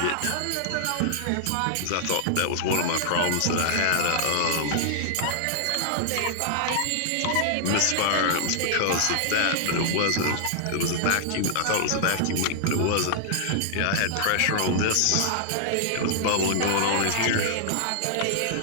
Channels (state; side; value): different; both; correlation -0.01